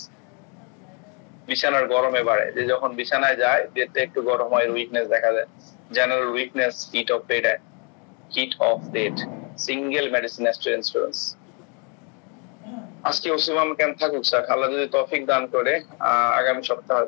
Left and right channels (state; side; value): quieter; right; 35.1 dB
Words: বিছানার গরমে বাড়ে, যে যখন বিছানায় যায় বেডটা একটু গরম হয়, উইকনেস দেখা যায়। General weakness, heat of date, single medicine, aster insurance. আজকে ওসিমাম ক্যাম্প থাকুক স্যার, আল্লাহ যদি তৌফিক দান করে আগামী সপ্তাহে